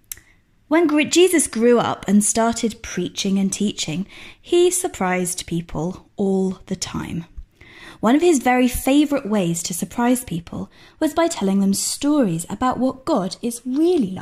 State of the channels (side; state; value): both; identical; correlation 1.00